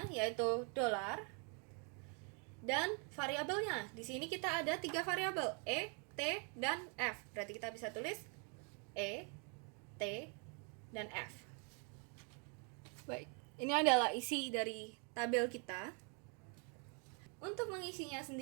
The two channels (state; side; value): quieter; left; 37.7 dB